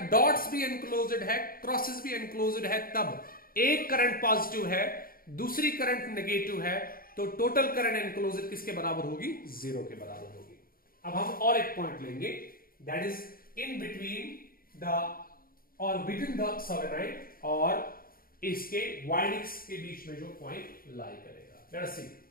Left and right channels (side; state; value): right; late; 0.42 ms